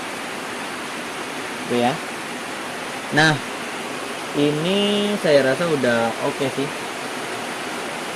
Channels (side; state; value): both; identical; correlation 1.00